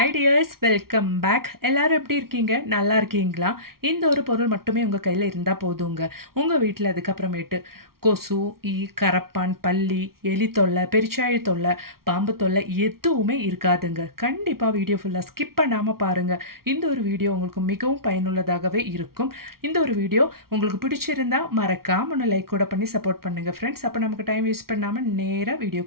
tears, welcome back. எல்லாரும் எப்படி இருக்கீங்க? நல்லா இருக்கீங்களா? இந்த ஒரு பொருள் மட்டுமே உங்கள் கையில் இருந்தால் போதுங்க. உங்கள் வீட்டில் அதுக்கப்புறமேட்டு கொசு, ஈ, கரப்பான், பல்லி, எலி தொல்லை, பெருச்சாழி தொல்லை, பாம்பு தொல்லை எதுவுமே இருக்காதுங்க. கண்டிப்பாக வீடியோ ஃபுல்லாக ஸ்கிப் பண்ணாமல் பாருங்கள். இந்த ஒரு வீடியோ உங்களுக்கு மிகவும் பயனுள்ளதாகவே இருக்கும். இந்த ஒரு வீடியோ உங்களுக்கு பிடிச்சிருந்தா மறக்காம ஒன்று லைக் கூட பண்ணி சப்போர்ட் பண்ணுங்கள் ஃப்ரெண்ட்ஸ். அப்போ நமக்கு டைம் வேஸ்ட் பண்ணாமல் நேராக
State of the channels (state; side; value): late; left; 0.93 ms